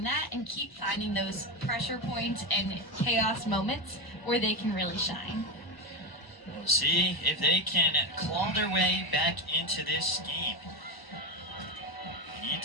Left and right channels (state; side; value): late; right; 1.0 ms